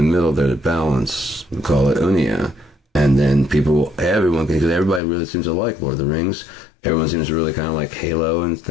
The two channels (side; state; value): right; drops out; at 5.0 s